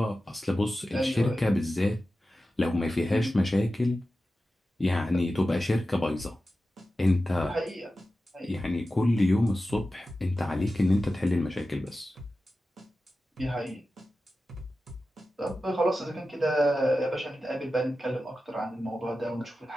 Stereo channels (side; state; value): both; normal; correlation 0.93